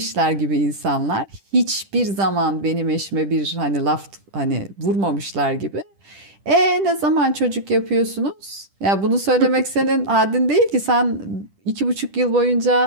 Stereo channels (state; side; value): late; left; 10 ms